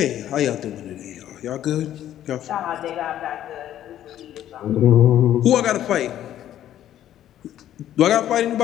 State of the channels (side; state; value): right; quieter; 11.8 dB